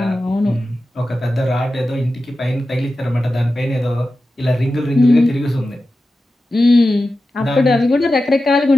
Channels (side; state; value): both; normal; correlation 0.93